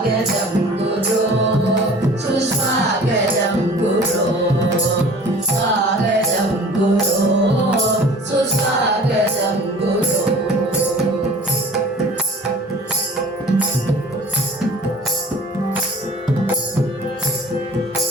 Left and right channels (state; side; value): normal; both; correlation 0.46